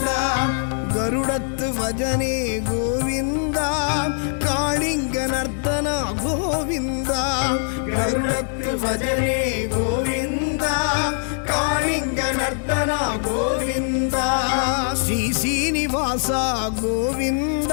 கருடத்து வஜனே கோவிந்தா காளிங்க நர்த்தன கோவிந்தா கருடத்து வஜனே கோவிந்தா காளிங்க நர்த்தன கோவிந்தா ஸ்ரீ சீனிவாசா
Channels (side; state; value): right; silent; digital silence